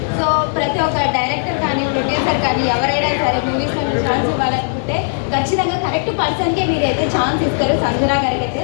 సో ప్రతి ఒక్క డైరెక్టర్ కానీ ప్రొడ్యూసర్ కానీ ఎవరైనా సరే మూవీస్లో ఛాన్స్ ఇవ్వాలనుకుంటే ఖచ్చితంగా కరెక్ట్ పర్సన్కే మీరైతే ఛాన్స్ ఇస్తారు సంజన గారికి అయితే.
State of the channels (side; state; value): right; silent; digital silence